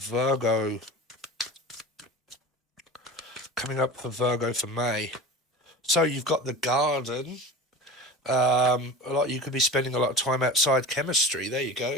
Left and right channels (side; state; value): both; normal; correlation 0.34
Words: Coming up for Virgo for May. So you've got the garden. You could be spending a lot of time outside. Chemistry. There you